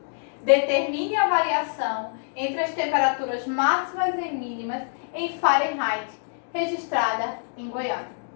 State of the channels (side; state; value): right; silent; digital silence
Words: Determine a variação entre as temperaturas máximas e mínimas em Fahrenheit registrada em Goiânia.